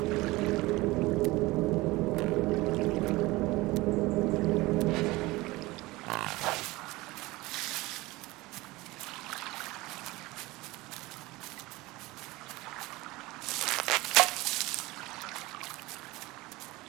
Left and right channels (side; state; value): left; quieter; 20.7 dB